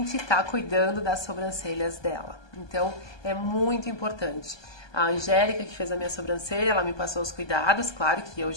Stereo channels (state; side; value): late; right; 1.2 ms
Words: está cuidando das sobrancelhas dela. Então é muito importante. A Angélica, que fez a minha sobrancelha, ela me passou os cuidados, claro que eu